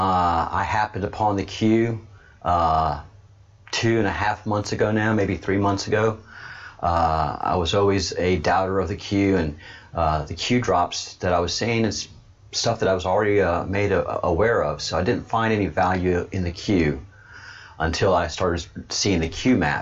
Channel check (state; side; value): identical; both; correlation 1.00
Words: happened upon the Q 2.5 months ago now, maybe 3 months ago. I was always a doubter of the Q, and the Q drops that I was seeing is stuff that I was already made aware of, so I didn't find any value in the Q until I started seeing the Q